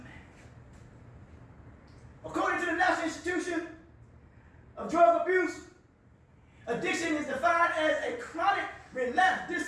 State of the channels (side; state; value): both; identical; correlation 1.00